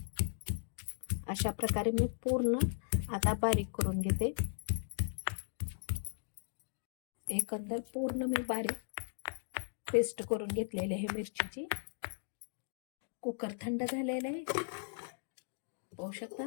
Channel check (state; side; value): silent; right; digital silence